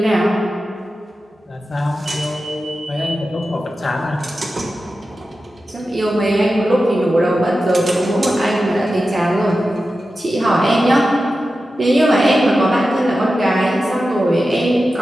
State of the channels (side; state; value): both; normal; correlation 0.92